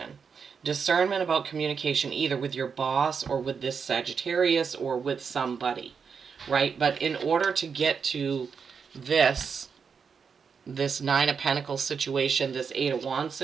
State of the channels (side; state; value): left; quieter; 6.1 dB